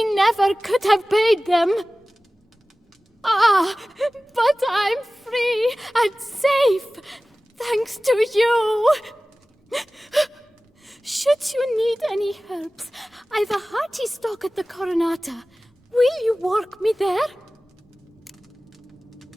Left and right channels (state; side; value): normal; both; correlation 0.97